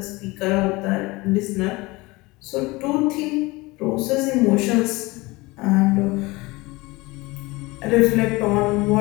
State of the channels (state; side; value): quieter; right; 22.7 dB